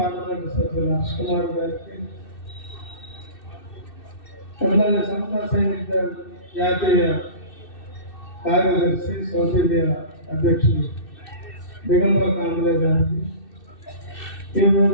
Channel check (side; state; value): right; late; 2.6 ms